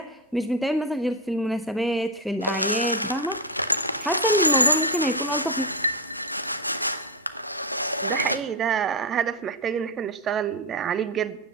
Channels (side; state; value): both; normal; correlation 0.05